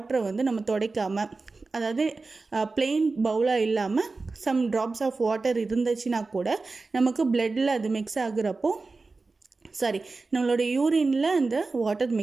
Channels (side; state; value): left; quieter; 3.8 dB